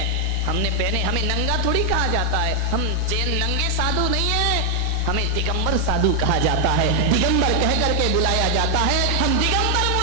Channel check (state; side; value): different; both; correlation 0.00